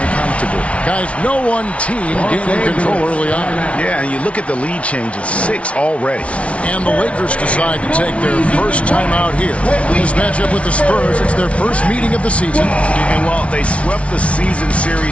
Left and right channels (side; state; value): right; late; 0.062 ms